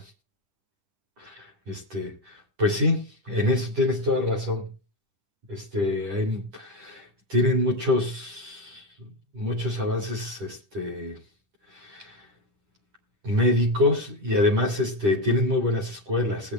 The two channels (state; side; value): late; left; 10 ms